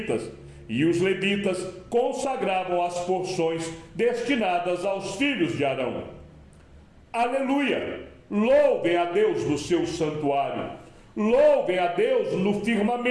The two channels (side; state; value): both; identical; correlation 1.00